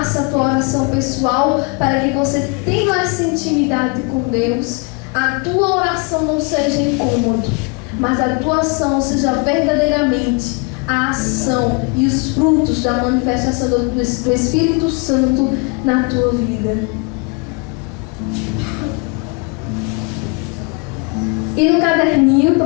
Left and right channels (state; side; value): quieter; right; 30.7 dB